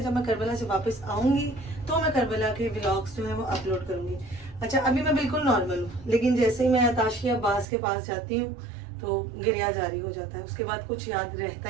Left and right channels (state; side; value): drops out; left; at 7.7 s